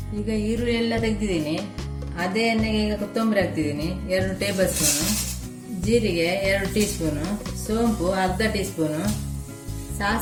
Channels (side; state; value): both; identical; correlation 1.00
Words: ಈಗ ಈರುಳ್ಳಿ ಎಲ್ಲ ತೆಗೆದಿದ್ದೀನಿ. ಅದೇ ಎಣ್ಣೆಗೆ ಈಗ ಕೊತ್ತಂಬರಿ ಹಾಕ್ತಿದ್ದೀನಿ, 2 ಟೇಬಲ್ ಸ್ಪೂನು. ಜೀರಿಗೆ 2 ಟೀ ಸ್ಪೂನು. ಸೋಂಪು ಅರ್ಧ ಟೀ ಸ್ಪೂನು.